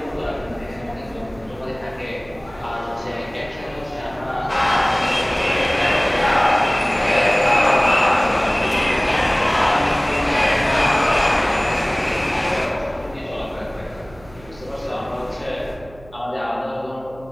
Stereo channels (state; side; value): noise; right; hum, 22 dB below the sound